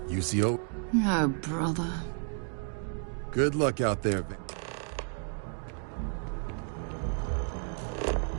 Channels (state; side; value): silent; left; 57 dB below the other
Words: UCO? Oh, brother. Good luck out there, Van.